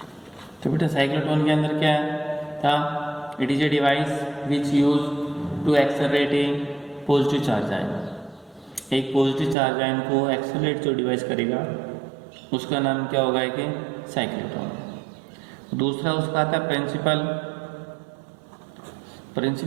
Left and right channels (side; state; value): left; drops out; at 9.6 s